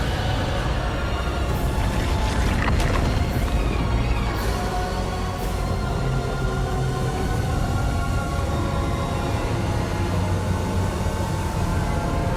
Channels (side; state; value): both; identical; correlation 1.00